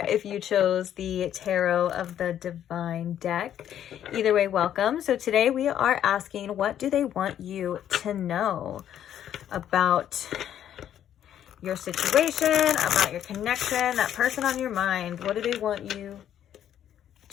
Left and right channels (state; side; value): quieter; right; 10.5 dB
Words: if you chose the Tarot of the Divine deck. Either way, welcome. So today we are asking, what do they want you to know about your situation, about your connection, that person on your mind? What do they want you